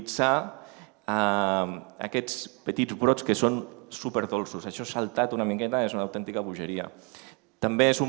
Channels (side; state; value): left; quieter; 34.7 dB